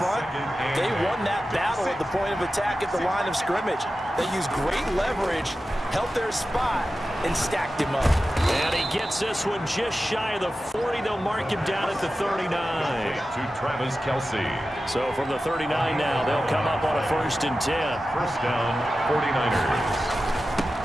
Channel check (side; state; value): both; normal; correlation 0.93